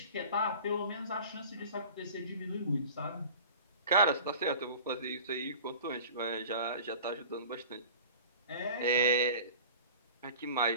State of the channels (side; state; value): both; inverted; correlation -0.39